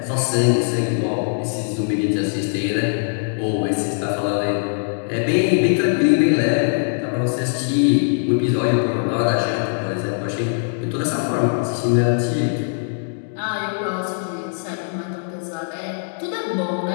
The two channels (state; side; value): silent; right; digital silence